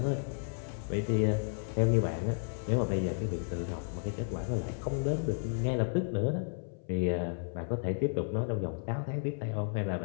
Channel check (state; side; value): silent; right; 55 dB below the other